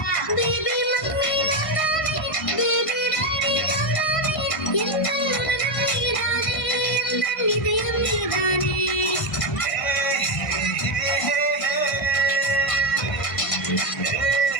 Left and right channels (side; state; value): right; late; 1.5 ms